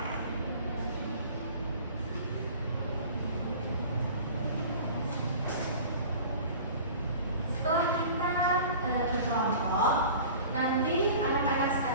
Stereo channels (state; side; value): inverted; both; correlation -0.42